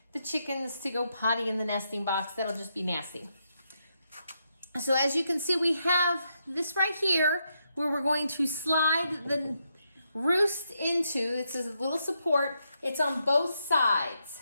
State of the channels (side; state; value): both; inverted; correlation -0.81